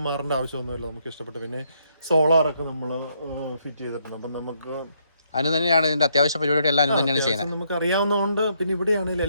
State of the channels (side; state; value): both; inverted; correlation -0.73